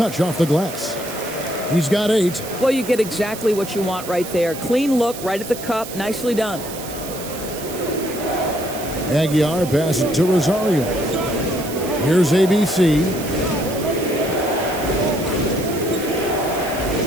off the glass. He's got 8. Well, you get exactly what you want right there. Clean look, right at the cup. Nicely done. Aguiar passes it to Rosario. Here's ABC.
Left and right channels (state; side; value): noise; right; hiss, 12 dB below the sound